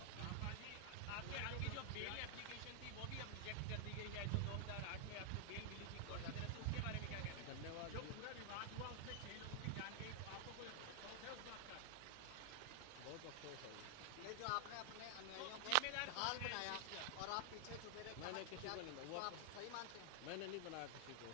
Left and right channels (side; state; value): both; different; correlation 0.00